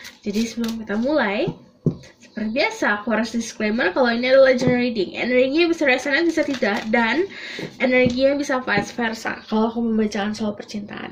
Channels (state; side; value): identical; both; correlation 1.00